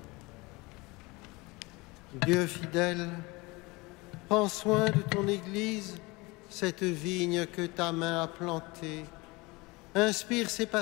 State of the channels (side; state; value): right; quieter; 24.3 dB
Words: Dieu fidèle, prends soin de ton Église, cette vigne que ta main a plantée. Inspire ses